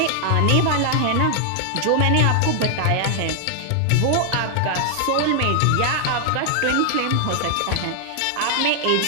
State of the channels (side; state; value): both; different; correlation 0.00